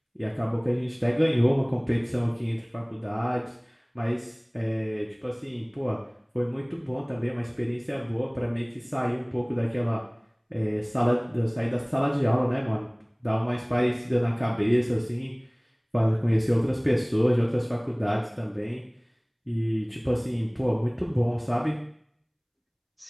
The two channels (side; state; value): both; identical; correlation 1.00